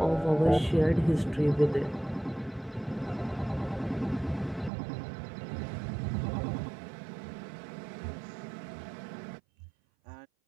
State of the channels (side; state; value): left; drops out; at 4.7 s